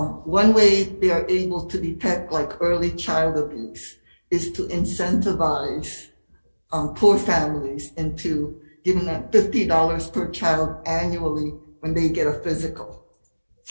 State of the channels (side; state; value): both; inverted; correlation -1.00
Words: way they are able to detect like early child abuse is to incentivize poor families into giving them $50 per child annually when they get a physical.